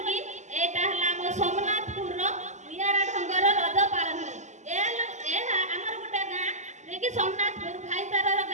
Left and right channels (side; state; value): left; late; 0.34 ms